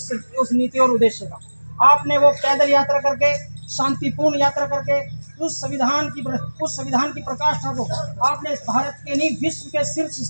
नीति और उद्देश्य का। आपने वो पैदल यात्रा करके, शांतिपूर्ण यात्रा करके उस संविधान की प्रकाष्ठा को आपने भारत के नहीं विश्व के शीर्ष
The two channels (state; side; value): inverted; both; correlation -1.00